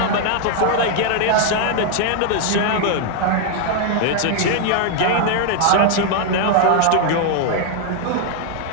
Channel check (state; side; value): different; both; correlation 0.00